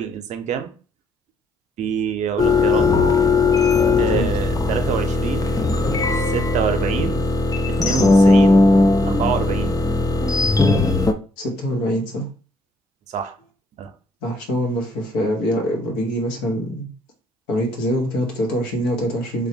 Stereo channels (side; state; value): both; normal; correlation 0.70